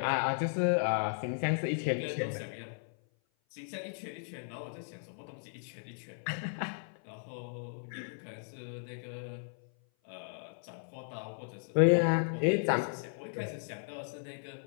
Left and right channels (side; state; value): right; silent; 54 dB below the other